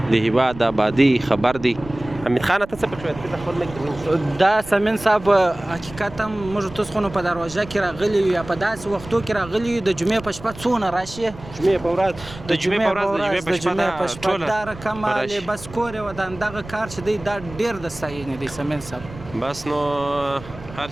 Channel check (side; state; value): right; noise; rumble, 16 dB below the sound